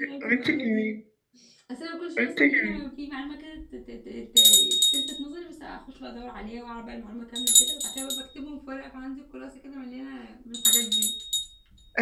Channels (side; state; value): both; identical; correlation 1.00